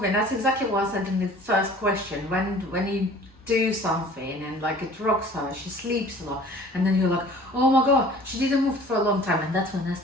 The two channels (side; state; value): both; normal; correlation 0.48